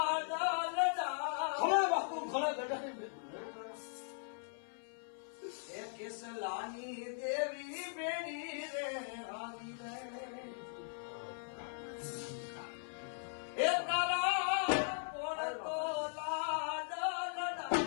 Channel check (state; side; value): silent; right; 52 dB below the other